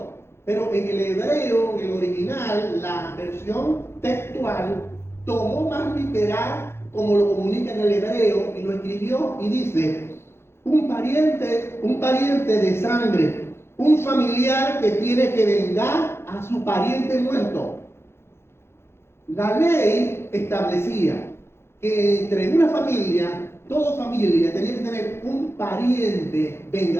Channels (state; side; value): late; right; 0.12 ms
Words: Pero en el hebreo, en el original, la versión textual tomó más literal como lo comunica en el hebreo y lo escribió y dice, un pariente de sangre, un familiar que tiene que vengar a su pariente muerto. La ley establecía que entre una familia, toda familia tenía que tener un pariente